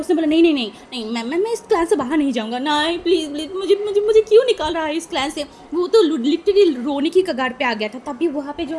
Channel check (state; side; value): identical; both; correlation 1.00